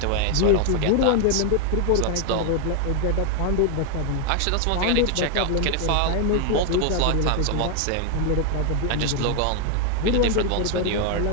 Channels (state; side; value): different; both; correlation 0.00